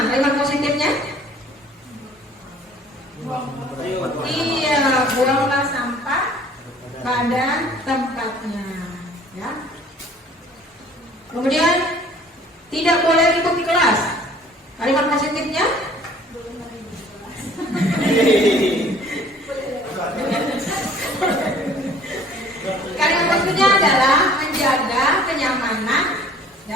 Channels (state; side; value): normal; both; correlation 0.53